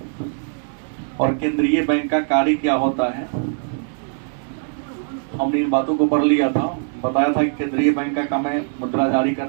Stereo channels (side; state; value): left; silent; 57 dB below the other